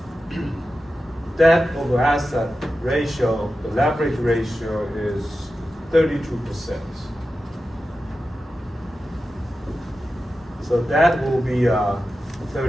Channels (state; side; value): normal; both; correlation 0.92